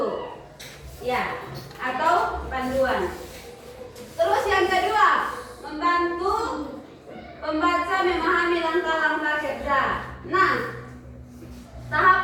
Ya, atau panduan. Terus yang kedua, membantu pembaca memahami langkah-langkah kerja. Nah,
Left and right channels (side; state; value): both; identical; correlation 1.00